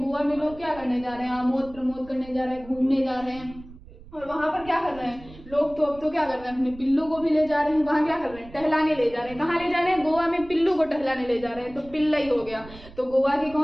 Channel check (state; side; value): noise; right; rumble, 19 dB below the sound